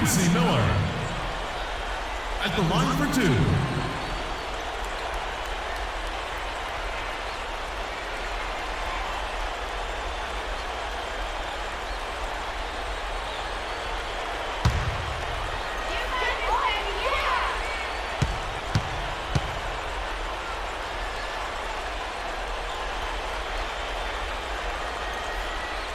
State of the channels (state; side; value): identical; both; correlation 1.00